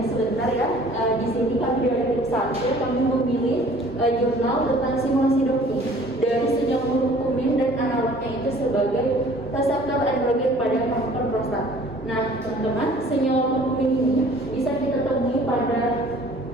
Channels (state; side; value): normal; both; correlation 0.52